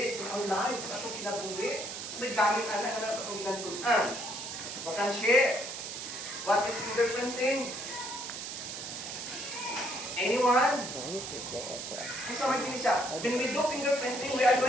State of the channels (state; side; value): noise; right; hiss, 7 dB below the sound